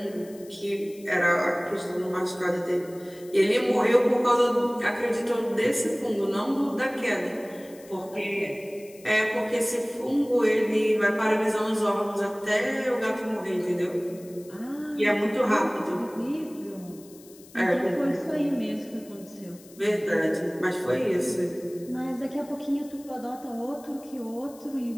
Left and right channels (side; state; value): left; noise; hiss, 23 dB below the sound